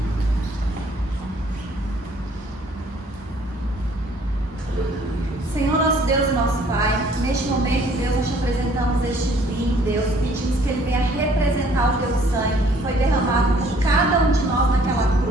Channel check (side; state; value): both; normal; correlation 0.59